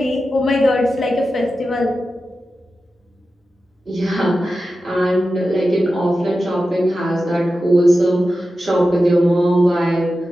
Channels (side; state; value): both; normal; correlation 0.92